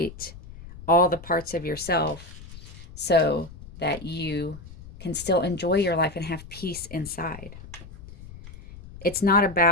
all the parts of yourself so that you can still enjoy your life and have peace inside. It's not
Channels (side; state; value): left; noise; rumble, 16 dB below the sound